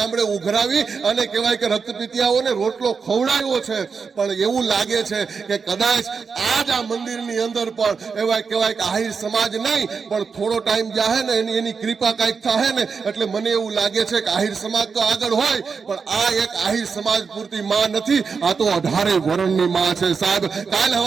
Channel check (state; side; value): quieter; left; 5.4 dB